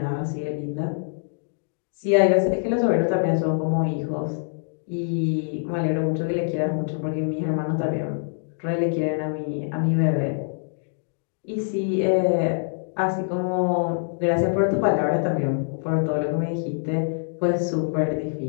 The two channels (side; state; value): right; silent; digital silence